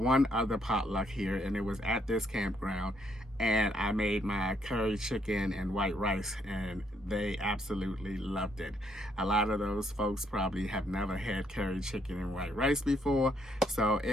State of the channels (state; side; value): normal; both; correlation 0.72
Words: other potluck here, and it was at this campground, and I made my curry chicken and white rice, and they absolutely loved it. A lot of those folks probably have never had curry chicken and white rice before, so